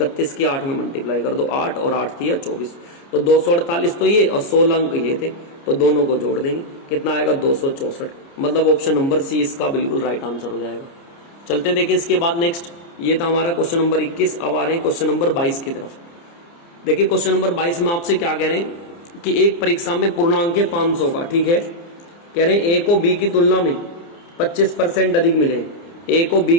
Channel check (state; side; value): late; right; 29 ms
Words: की 8 में मल्टीप्लाई कर दो, 8 और 8 थी 24, तो 248 तो ये और 16 अंक ये थे, तो दोनों को जोड़ देंगे, कितना आएगा, 264। मतलब ऑप्शन नंबर सी इसका बिल्कुल राइट आंसर हो जाएगा। चलते देखिए इसके बाद नेक्स्ट, ये था हमारा क्वेश्चन नंबर 21। अब आ रहे हैं क्वेश्चन नंबर 22 की तरफ। देखिए क्वेश्चन नंबर 22 में आपसे क्या कह रहे हैं कि एक परीक्षा में पूर्णांक है 500 का, ठीक है, कह रहे हैं ए को बी की तुलना में 25% अधिक मिले, ए को बी